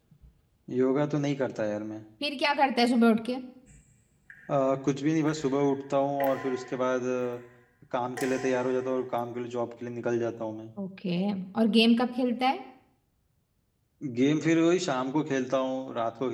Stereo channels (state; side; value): identical; both; correlation 1.00